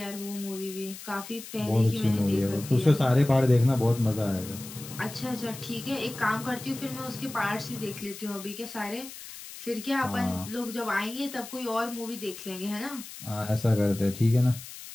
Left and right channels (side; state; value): left; noise; hiss, 13 dB below the sound